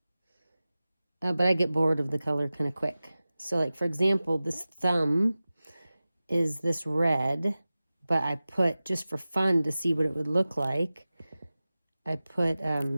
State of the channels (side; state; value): both; inverted; correlation -0.96